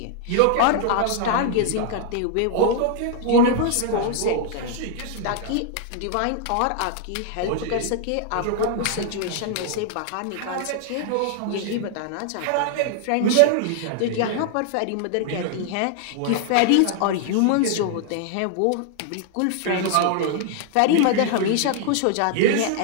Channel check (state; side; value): different; both; correlation 0.00